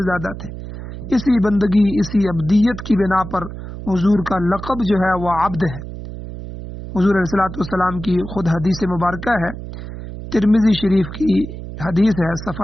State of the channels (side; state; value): right; noise; hum, 10 dB below the sound